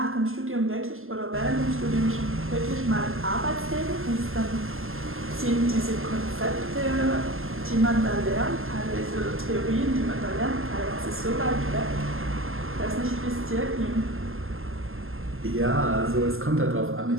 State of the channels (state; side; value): late; left; 0.61 ms